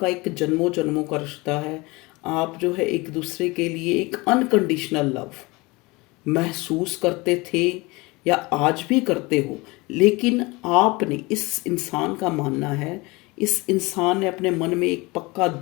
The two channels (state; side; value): quieter; right; 24.0 dB